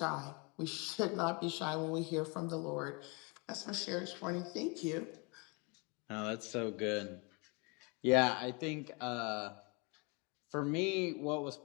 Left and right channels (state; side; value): quieter; right; 31.0 dB